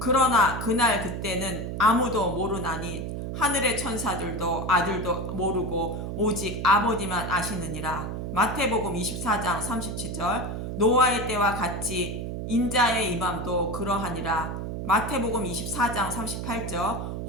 그날 그때는 아무도 모르나니 하늘의 천사들도 아들도 모르고 오직 아버지만 아시느니라. 마태복음 24장 37절 노아의 때와 같이 인자의 임함도 그러하니라. 마태복음 24장 38절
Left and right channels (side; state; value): right; noise; hum, 5 dB below the sound